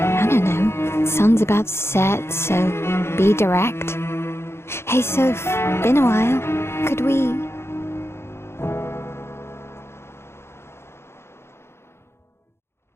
don't know. Sun's about to set, so be direct. Hey, Soph, been a while. Could we...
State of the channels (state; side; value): late; right; 0.12 ms